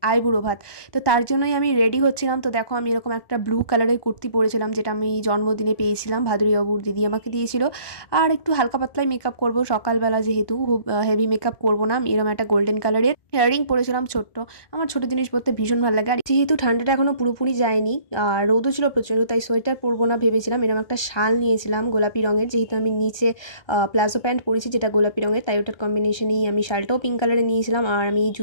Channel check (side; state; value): right; late; 1.2 ms